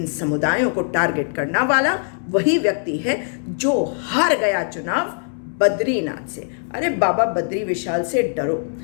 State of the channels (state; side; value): silent; right; digital silence